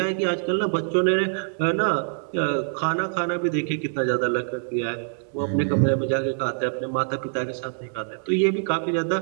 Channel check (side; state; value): left; silent; 62 dB below the other